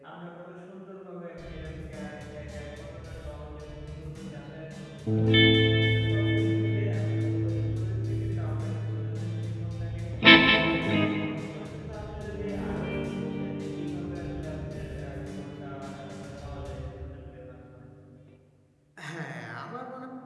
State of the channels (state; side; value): identical; both; correlation 1.00